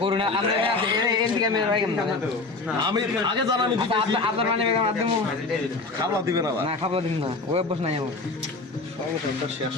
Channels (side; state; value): right; quieter; 3.6 dB